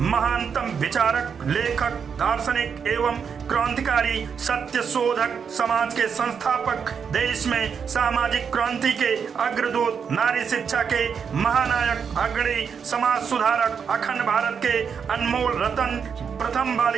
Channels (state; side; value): quieter; left; 6.7 dB